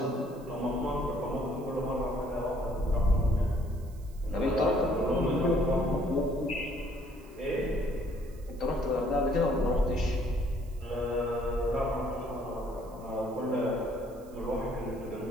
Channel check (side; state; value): right; noise; hiss, 27 dB below the sound